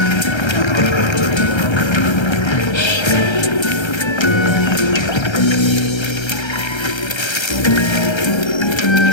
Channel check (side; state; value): right; late; 1.3 ms